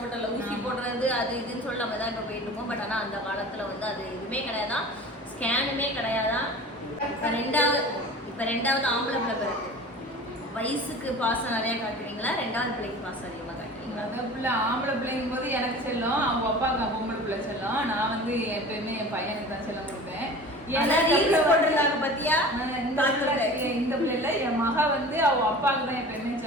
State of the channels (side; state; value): both; normal; correlation 0.38